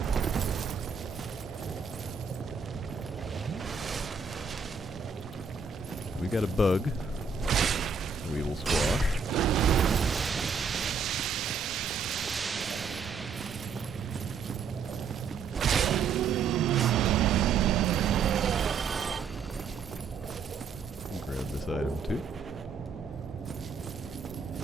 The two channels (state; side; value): quieter; left; 5.7 dB